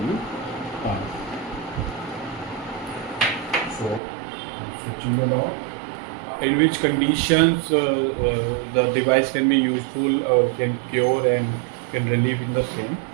So I'm switching the knob. In which conditions the device can be useful or can cure and can relieve in the same,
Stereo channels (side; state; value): left; drops out; at 4.0 s